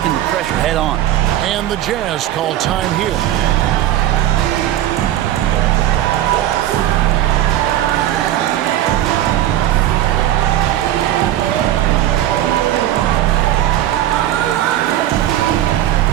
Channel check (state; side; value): quieter; left; 12.8 dB